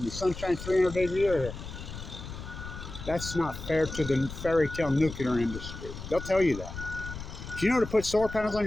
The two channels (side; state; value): left; noise; rumble, 10 dB below the sound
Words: The sun shines 300 days a year here. That's not fair to the fairy tale nuclear industry. They'll tell you that. Do you know to put solar panels on